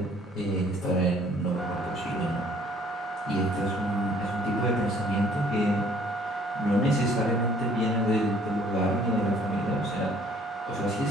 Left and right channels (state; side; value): normal; both; correlation 0.59